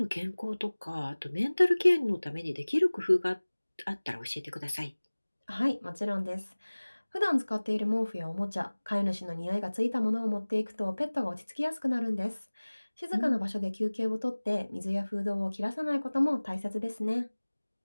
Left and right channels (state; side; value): inverted; both; correlation -1.00